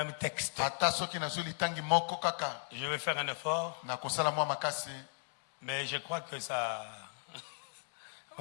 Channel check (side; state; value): right; silent; digital silence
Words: texte. Ata soki na zoli tangi moko kaka. Je vais faire un effort, Na kosala mwa makasi. mais je crois que ça...